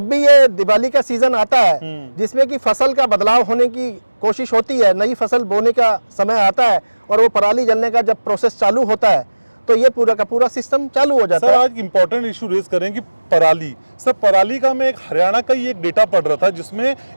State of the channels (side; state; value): both; inverted; correlation -1.00